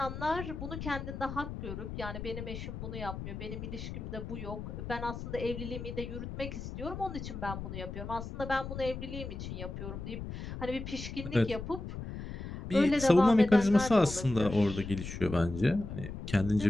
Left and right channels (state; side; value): noise; left; rumble, 8 dB below the sound